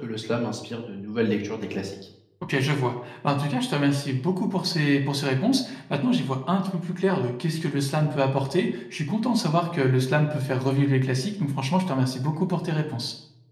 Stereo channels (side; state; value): both; identical; correlation 1.00